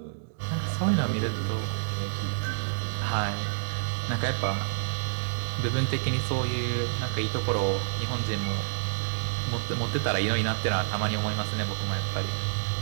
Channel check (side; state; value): left; silent; digital silence